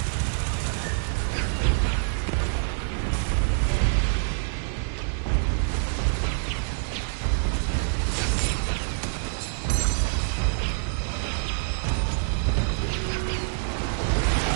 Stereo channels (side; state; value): left; silent; 60 dB below the other